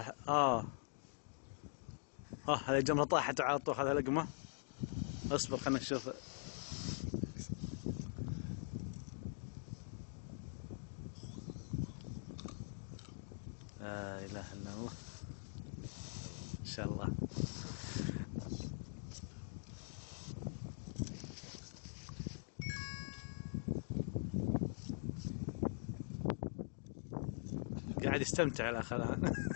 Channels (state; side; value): silent; right; digital silence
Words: هذه الجمرة طاحت على طول. هذا لقمة. اصبر خلنا نشوف. لا إله إلا الله. إن شاء الله. قاعد يستمتع الأخ الآن.